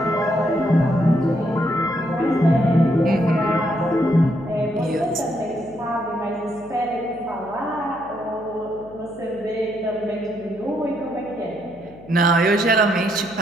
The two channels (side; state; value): left; noise; hum, 22 dB below the sound